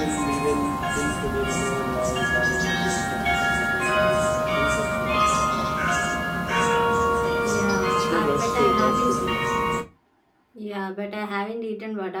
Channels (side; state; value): both; identical; correlation 1.00